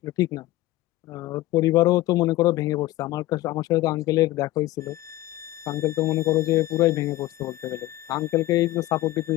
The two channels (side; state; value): right; quieter; 16.7 dB